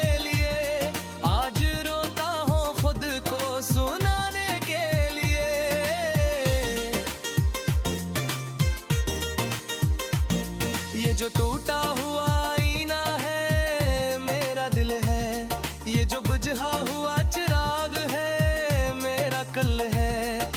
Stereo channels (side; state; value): both; identical; correlation 1.00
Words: लिए, आज रोता हूँ खुद को सुनाने के लिए। ये जो टूटा हुआ आईना है मेरा दिल है, ये जो बुझा हुआ चिराग है मेरा कल है।